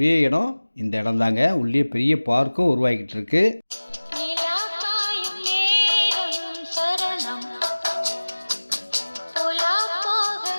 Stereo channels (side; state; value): both; inverted; correlation -1.00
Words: இடம் இந்த இடம் தாங்க. உள்ளே பெரிய பார்க்கும் உருவாக்கிட்டு இருக்கு.